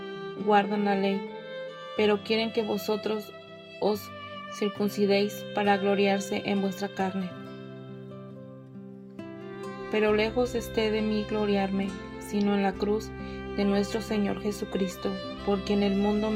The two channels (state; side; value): identical; both; correlation 1.00